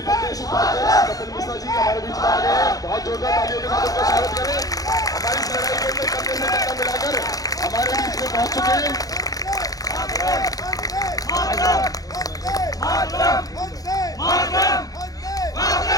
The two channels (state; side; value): late; right; 0.17 ms